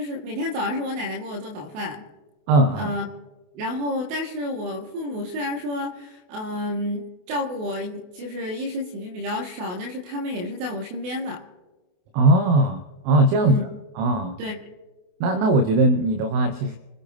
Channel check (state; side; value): late; left; 28 ms